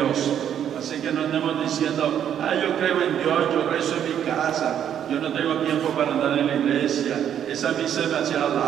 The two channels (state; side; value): quieter; left; 9.5 dB